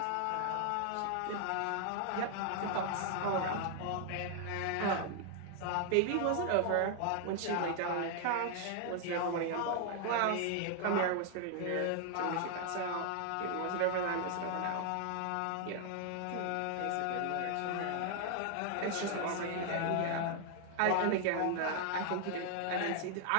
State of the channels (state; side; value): different; both; correlation 0.00